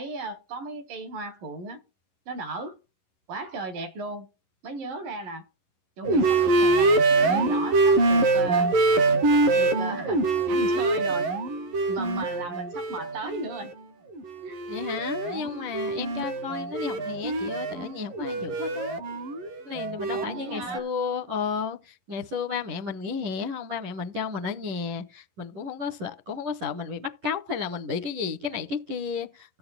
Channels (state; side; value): late; left; 11 ms